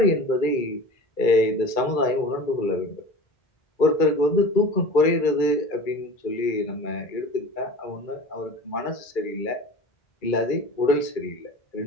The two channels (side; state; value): right; late; 2.3 ms